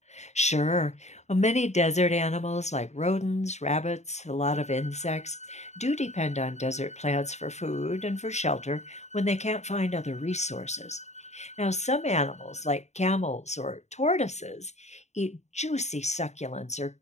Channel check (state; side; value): late; right; 0.33 ms